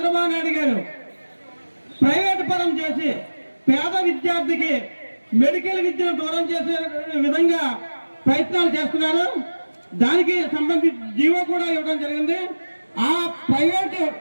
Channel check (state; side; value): inverted; both; correlation -1.00